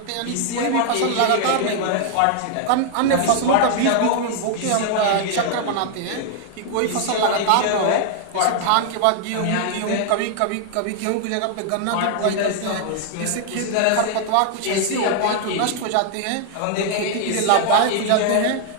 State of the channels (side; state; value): both; different; correlation 0.00